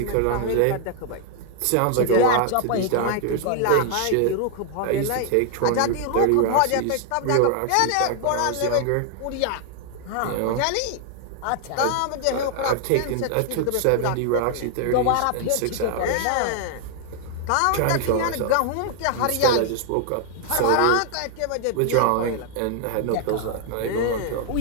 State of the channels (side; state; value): both; different; correlation 0.00